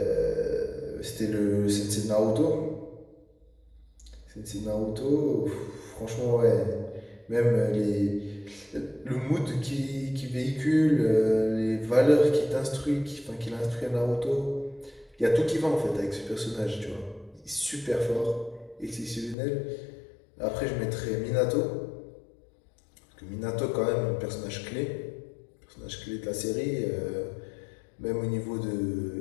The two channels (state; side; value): drops out; right; at 19.4 s